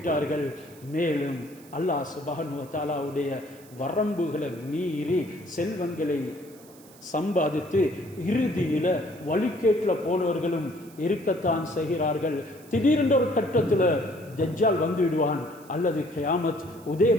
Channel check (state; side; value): noise; right; hiss, 24 dB below the sound